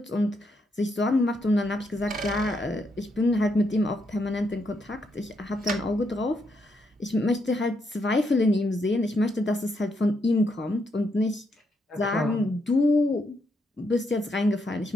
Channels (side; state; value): both; normal; correlation 0.78